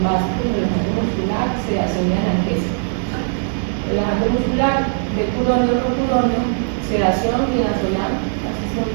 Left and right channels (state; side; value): silent; left; digital silence